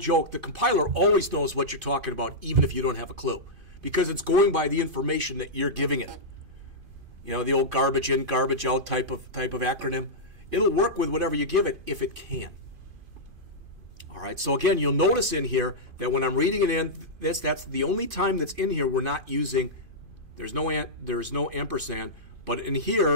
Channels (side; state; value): left; late; 2.5 ms